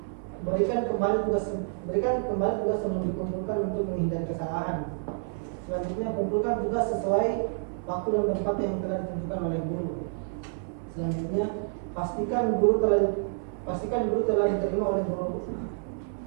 Berikan kembali tugas sebelum dikumpulkan untuk menghindari kesalahan. Selanjutnya, kumpulkan tugas sesuai waktu dan tempat yang telah ditentukan oleh guru. Selanjutnya, pastikan guru telah diterima oleh guru.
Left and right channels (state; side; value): silent; left; 57 dB below the other